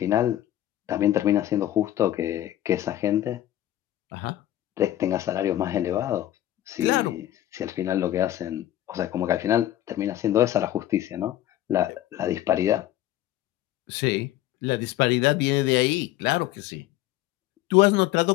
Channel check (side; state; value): right; quieter; 13.5 dB